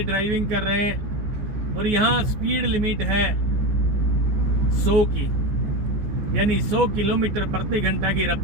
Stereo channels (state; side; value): late; left; 14 ms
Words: ड्राइविंग कर रहे हैं और यहाँ स्पीड लिमिट है 100 की, यानी 100 किलोमीटर प्रति घंटा की